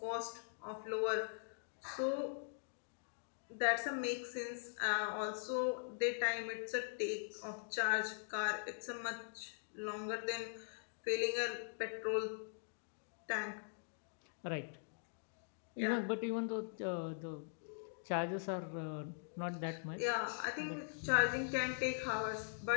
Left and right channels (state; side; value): silent; right; digital silence